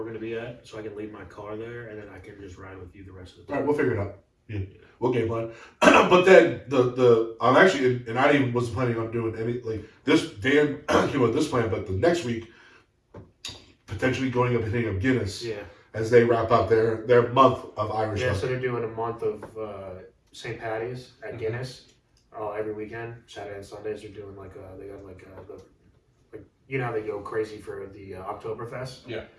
going to be at, so I can leave my car there, and then I can just ride with you the rest of the time. All right, we'll figure it out. Yeah, we'll game plan. But then I'm actually, and I even wasn't planning on doing any like this. Dan came with this plan, but the next week potentially going up and hitting up Guinness. Yeah. As they wrap up their month of Irish. Yeah, so they're doing a month of St. Patty's at Guinness every weekend, Saturday and Sundays. They're doing they got how they go crazy for the Oktoberfest. Yeah.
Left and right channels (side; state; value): both; identical; correlation 1.00